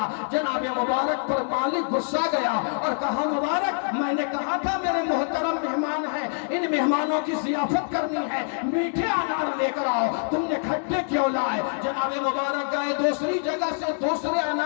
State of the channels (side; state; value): right; silent; digital silence